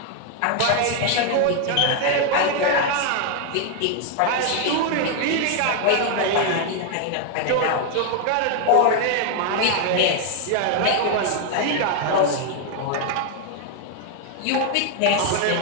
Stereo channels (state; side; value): different; both; correlation 0.00